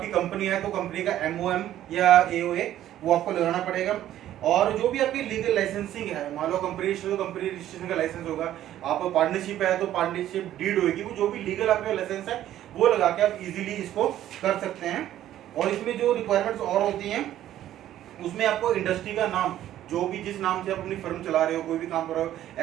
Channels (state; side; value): quieter; left; 12.4 dB